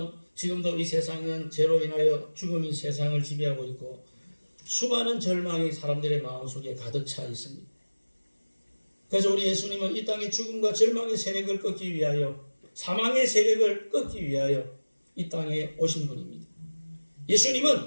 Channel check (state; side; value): inverted; both; correlation -1.00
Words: 지금도 이 세상은 죄로 인하여 죽음이 세상을 지배하고 있고 수많은 절망이 사람들의 마음속에 가득 차 있습니다. 그래서 우리 예수님은 이 땅의 죽음과 절망의 세력을 꺾기 위하여 사망의 세력을 꺾기 위하여 이 땅에 오신 분입니다.